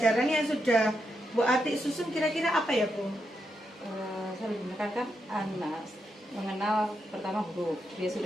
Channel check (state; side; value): normal; both; correlation 0.83